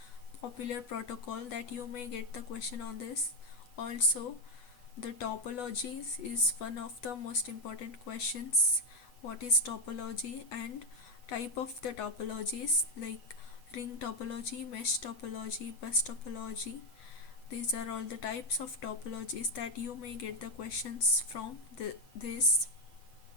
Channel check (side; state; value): right; late; 8.1 ms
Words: popular protocol that you may get the question on this. Also, the topologies is one of the most important questions. What is topology and type of the topologies like ring topology, mesh topology, bus topology. These are all the types of topologies that you may get the questions from this.